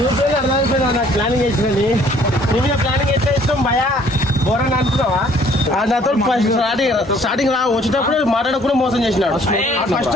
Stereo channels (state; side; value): normal; both; correlation 0.59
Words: అర్థమైపోయినా. నాకు ప్లానింగ్ వేసినది నీ మీద ప్లానింగ్ ఎట్లా ఇష్టం భయా ఘోరంగా అనుకున్నావా. నాతో స్టార్టింగ్ వచ్చేటప్పుడు మాట్లాడకుండా మోసం చేసినాడు. ఫస్ట్